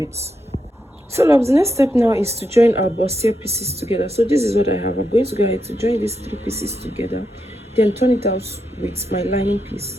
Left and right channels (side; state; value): both; normal; correlation 0.84